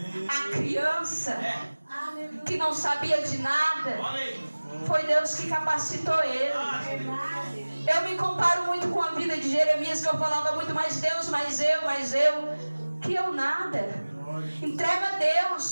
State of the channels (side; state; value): both; inverted; correlation -1.00